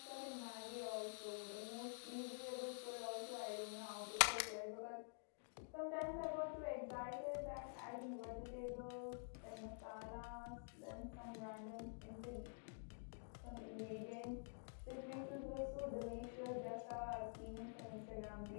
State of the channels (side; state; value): right; silent; digital silence